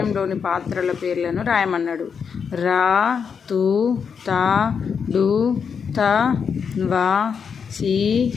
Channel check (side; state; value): right; quieter; 6.5 dB